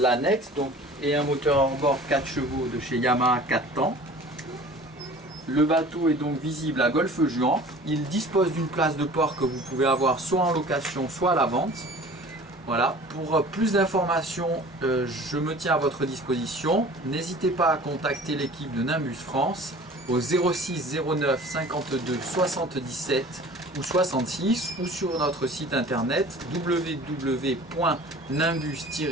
et un moteur hors-bord 4 chevaux de chez Yamaha 4 temps. Le bateau est donc visible à Golfe-Juan. Il dispose d'une place de port que vous pouvez avoir soit en location, soit à la vente. Voilà, pour plus d'informations, je me tiens à votre disposition. N'hésitez pas à contacter l'équipe de Nimbus France au 06 09 52 77 ou 66 ou sur notre site internet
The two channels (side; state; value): both; normal; correlation 0.44